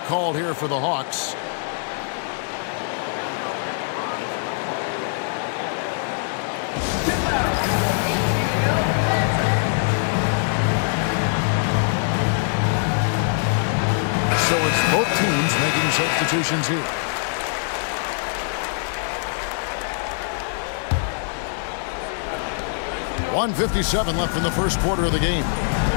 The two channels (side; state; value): right; silent; digital silence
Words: called here for the Hawks. So it's both teams making substitutions here. .157 left in the first quarter of the game.